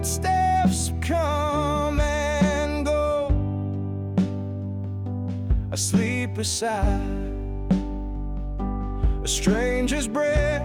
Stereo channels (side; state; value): both; identical; correlation 1.00